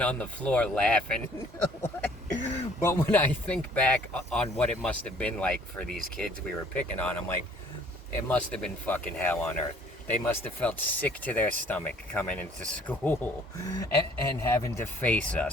on the floor laughing. But when I think back on what it must have been like for these kids we were picking on, I'm like, it must have been fucking hell on earth. They must have felt sick to their stomach coming into school and having to face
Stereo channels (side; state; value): both; normal; correlation 0.57